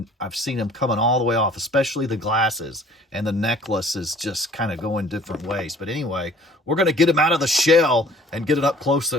I've seen them coming all the way off, especially the glasses, and the necklace is just kind of going different ways. But anyway, we're going to get him out of the shell and get an up close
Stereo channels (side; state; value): both; normal; correlation 0.51